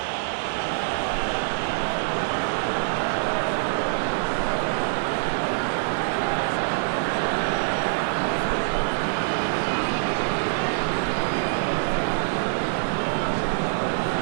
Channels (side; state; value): left; silent; 62 dB below the other